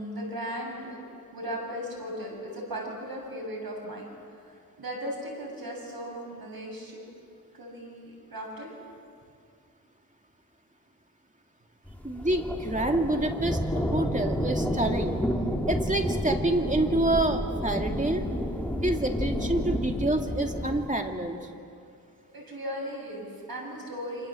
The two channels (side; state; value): both; normal; correlation 0.56